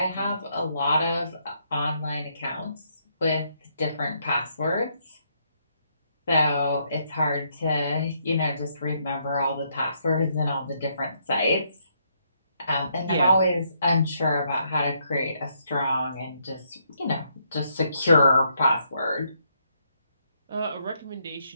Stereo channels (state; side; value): inverted; both; correlation -0.74